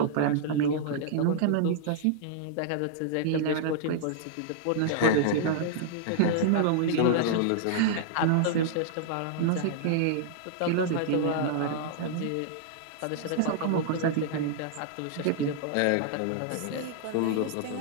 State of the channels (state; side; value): different; both; correlation -0.01